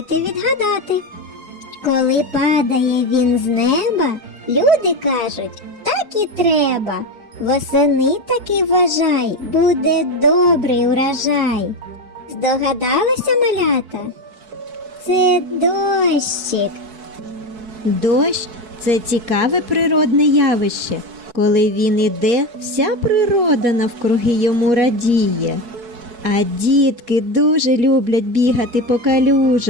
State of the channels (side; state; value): left; late; 4.6 ms